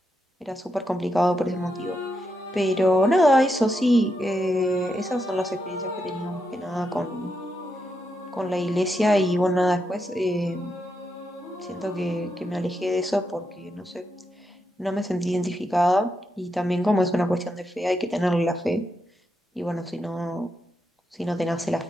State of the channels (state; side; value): normal; both; correlation 0.83